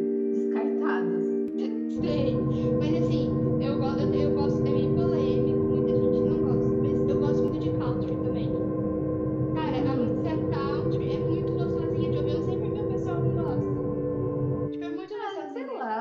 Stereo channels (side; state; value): both; identical; correlation 1.00